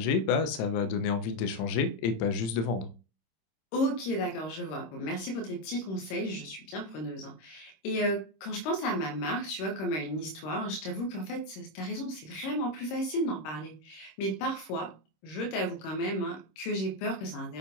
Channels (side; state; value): right; late; 26 ms